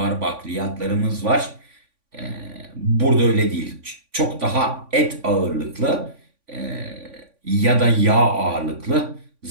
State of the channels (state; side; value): late; left; 3.5 ms